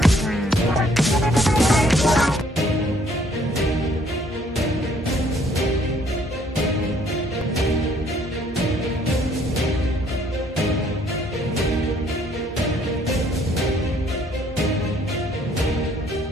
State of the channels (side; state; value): both; normal; correlation 0.63